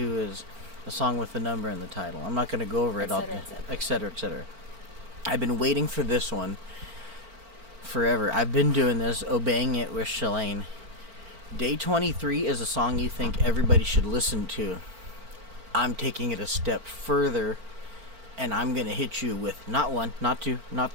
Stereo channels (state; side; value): late; left; 4.4 ms